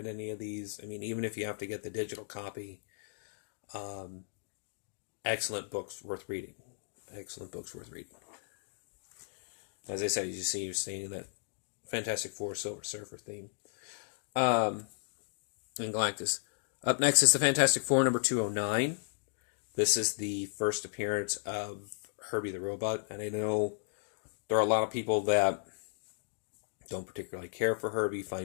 any of these, I mean, even if you have to get the digital copy, excellent books worth reading. Excellent books worth reading. As I said, as you see, you're seeing that Fantastic Four Silver Surfer theme. And Galactus. Up next is the Fantastic Four number 209. This is the first appearance of Herbie the Robot, and I know there are a lot of people that don't particularly care for Herbie,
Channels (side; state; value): right; silent; digital silence